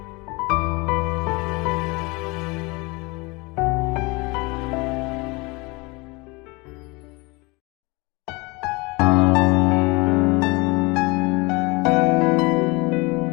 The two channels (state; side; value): quieter; right; 26.1 dB